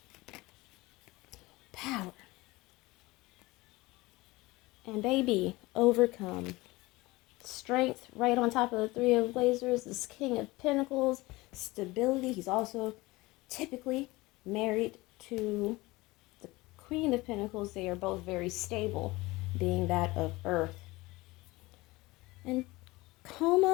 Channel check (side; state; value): right; quieter; 21.2 dB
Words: Power. And baby, overcome. Strength right on top of the Three of Blazers, this King of Pentacles, stability. He's also typically married to the Queen of Pentacles. They are both very stable, being that of Earth. And